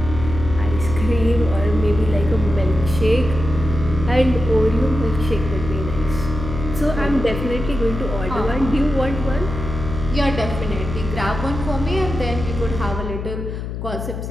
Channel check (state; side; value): noise; left; hum, 6 dB below the sound